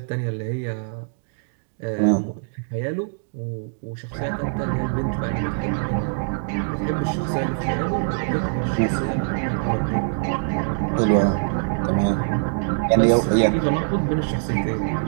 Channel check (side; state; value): left; silent; digital silence